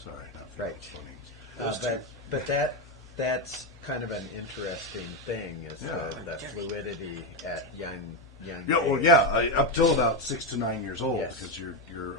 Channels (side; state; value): both; normal; correlation 0.08